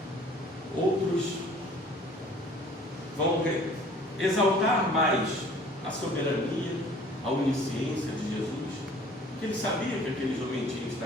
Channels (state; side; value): normal; both; correlation 0.51